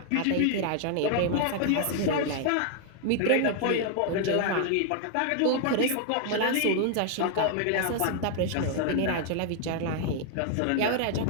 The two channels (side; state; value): both; different; correlation 0.00